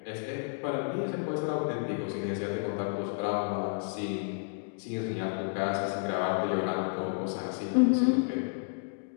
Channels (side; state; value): right; silent; digital silence